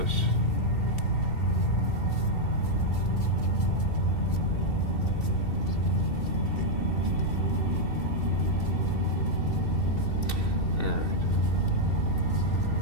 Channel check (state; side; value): late; right; 2.7 ms